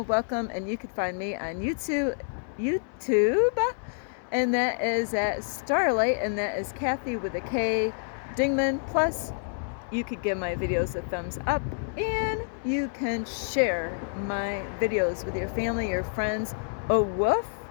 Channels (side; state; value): right; silent; digital silence